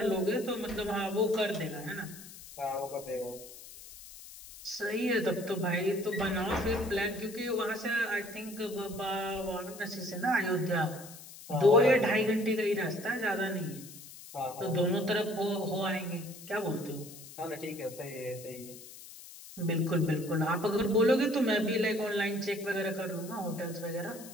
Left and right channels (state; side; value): noise; left; hiss, 16 dB below the sound